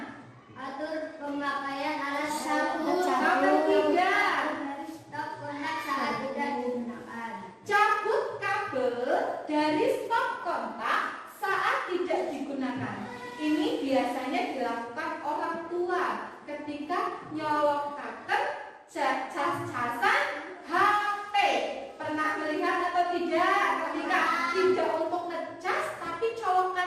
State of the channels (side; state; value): both; identical; correlation 1.00